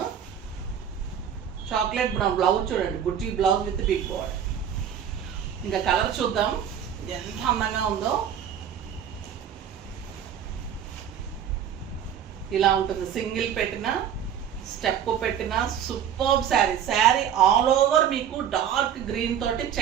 చాక్లెట్ బ్రౌన్ బ్లౌజ్ చూడండి, బుట్టి బ్లౌజ్ విత్ బిగ్ బార్డర్. ఇంకా కలర్ చూద్దాం ఎంత అందంగా ఉందో. ఇలా ఉంటుంది, సింగిల్ పెట్టిన, స్టెప్ పెట్టిన super sari. Sari all over మీకు డార్క్ గ్రీన్ తోటి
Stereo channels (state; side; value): quieter; left; 8.9 dB